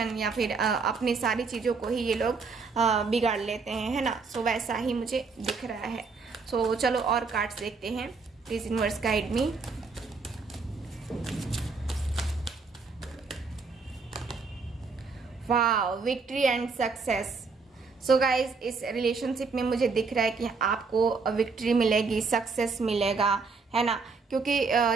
या फिर अपनी सारी चीज़ों को ही ये लोग बिगाड़ लेते हैं, है ना। सो वैसा ही मुझे दिख रहा है। सो चलो और कार्ड्स देखते हैं। Please universe guide me. Wow, victory and success. So guys इस रिलेशनशिप में मुझे दिख रहा है कि आपको विक्ट्री मिलेगी, सक्सेस मिलेगा, है ना। क्योंकि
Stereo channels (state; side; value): quieter; left; 4.6 dB